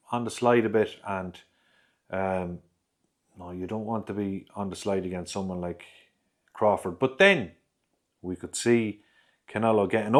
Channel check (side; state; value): both; identical; correlation 1.00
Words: on the slide a bit, and no, you don't want to be on the slide against someone like Crawford. But then we could see Canelo getting